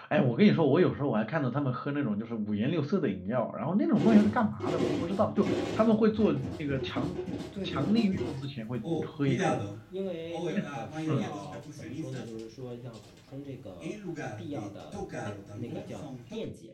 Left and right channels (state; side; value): identical; both; correlation 1.00